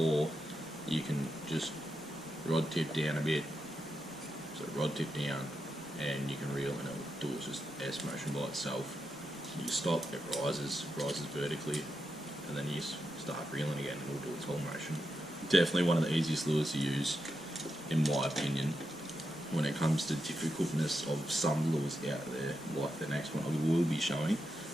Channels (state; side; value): normal; both; correlation 0.86